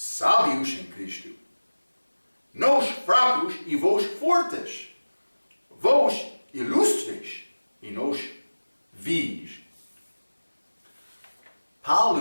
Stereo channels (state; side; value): inverted; both; correlation -1.00